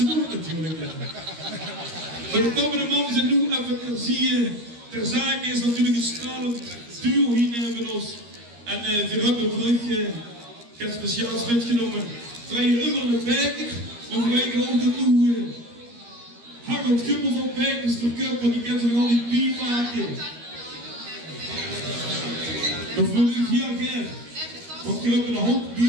doen natuurlijk. Maar de komende man zijn nu even ter zake is natuurlijk een stralend duo hier van ons. En we hebben terug geen speciaals metgenomen. Terwijl je immer de Bijker, dan weten we ook dat nu Harold Gubbels op Bijkers verkupt, want die kan ze nog al die bier maken. Dat wil ik heel graag. Want je hebt een hoop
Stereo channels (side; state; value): left; late; 13 ms